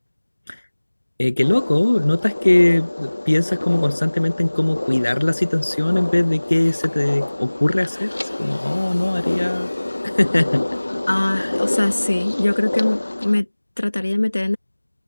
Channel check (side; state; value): both; inverted; correlation -1.00